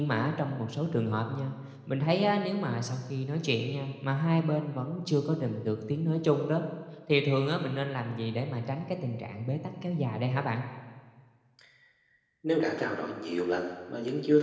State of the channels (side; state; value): both; identical; correlation 1.00